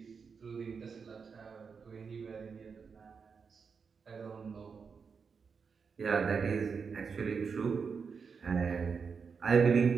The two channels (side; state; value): left; quieter; 5.7 dB